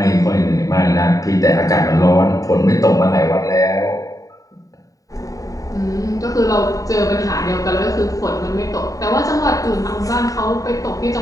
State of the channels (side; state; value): right; late; 0.16 ms